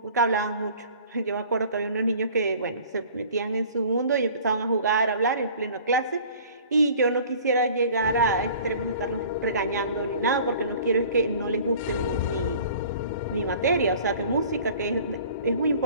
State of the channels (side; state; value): both; inverted; correlation -0.48